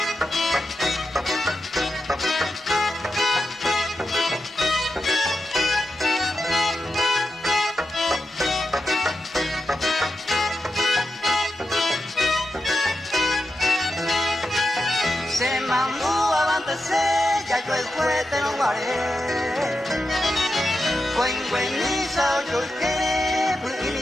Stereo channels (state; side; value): normal; both; correlation 0.88